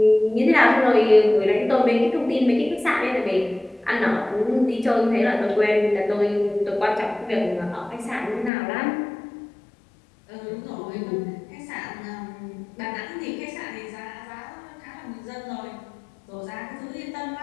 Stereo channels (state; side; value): drops out; right; at 8.5 s